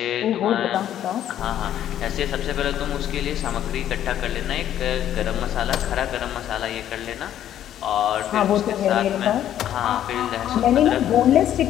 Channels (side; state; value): right; quieter; 11.1 dB